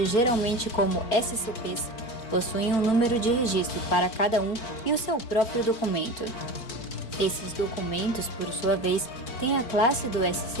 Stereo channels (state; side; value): late; right; 4.5 ms